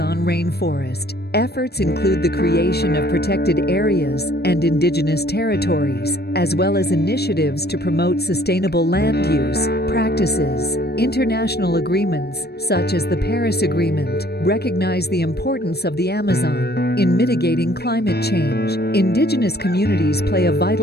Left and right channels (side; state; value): right; late; 0.47 ms